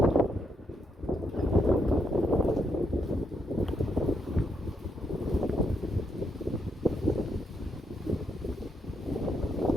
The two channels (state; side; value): normal; both; correlation 0.78